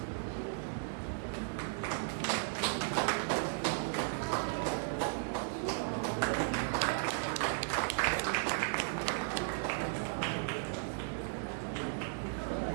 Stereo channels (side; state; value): left; silent; digital silence